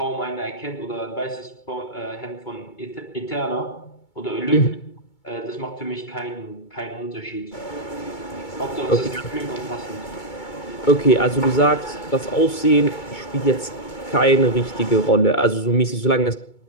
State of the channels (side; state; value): right; late; 2.2 ms